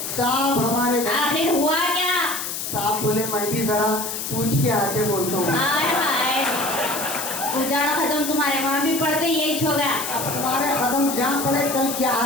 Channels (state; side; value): noise; left; hiss, 5 dB below the sound